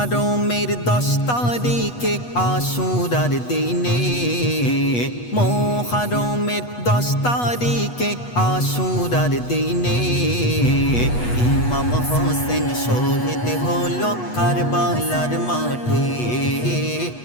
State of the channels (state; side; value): late; right; 8.3 ms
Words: 10 তারিখে আশুরার দিনে, মোহরমের 10 তারিখে আশুরার দিনে ইমাম হোসেন শহীদ হলো কারবালার মাঠে।